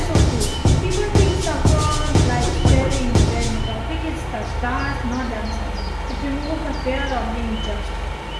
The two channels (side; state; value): both; identical; correlation 1.00